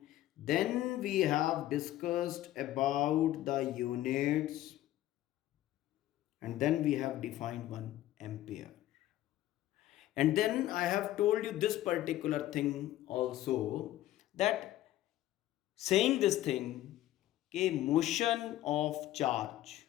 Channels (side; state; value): right; quieter; 14.4 dB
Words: Then we have discussed about the units, and then we have defined 1 ampere, and then I have told you this particular thing also, that saying this thing, कि motion of charge